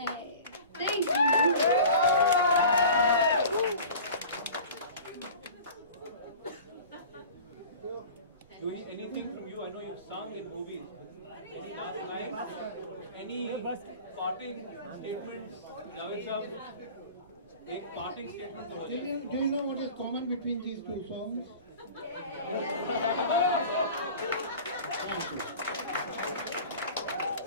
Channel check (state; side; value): inverted; both; correlation -0.40